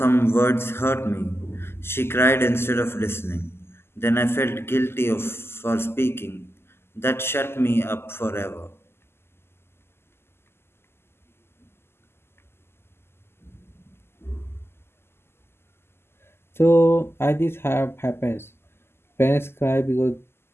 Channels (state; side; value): late; right; 0.12 ms